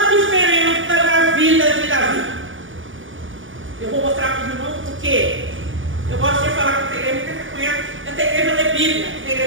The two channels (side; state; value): left; late; 0.57 ms